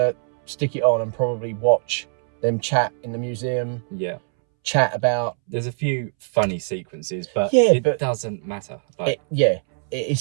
stick it on and probably watch them chat in the museum. Yeah. Chat about. There's a few funny sequences, but it doesn't matter.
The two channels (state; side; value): silent; left; 64 dB below the other